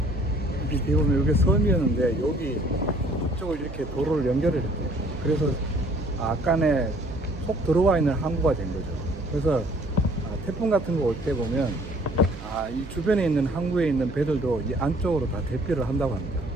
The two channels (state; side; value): noise; right; hum, 14 dB below the sound